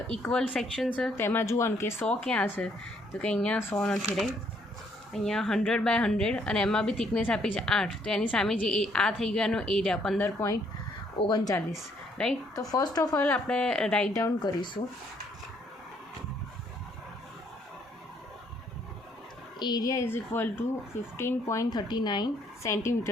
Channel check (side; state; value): both; normal; correlation 0.68